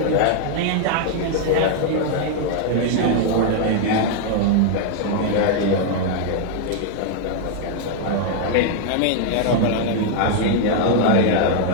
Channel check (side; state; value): both; different; correlation 0.00